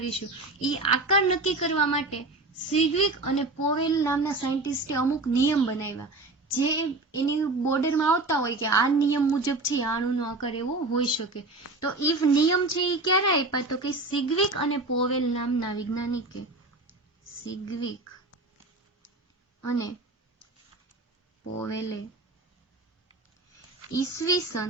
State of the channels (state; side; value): quieter; left; 3.1 dB